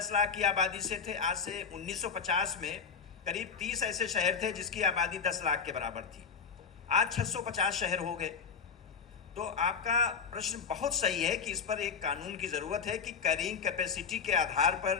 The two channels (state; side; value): quieter; right; 6.0 dB